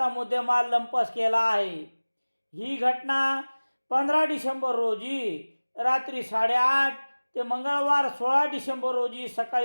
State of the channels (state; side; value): inverted; both; correlation -1.00